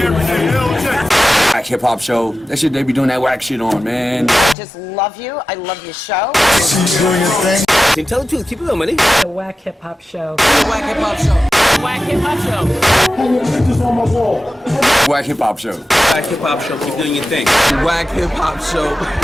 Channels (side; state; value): both; normal; correlation 0.93